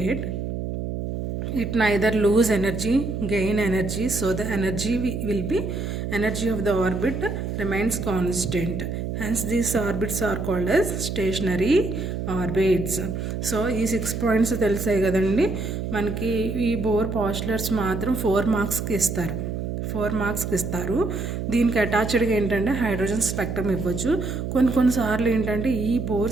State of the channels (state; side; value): noise; right; hum, 4 dB below the sound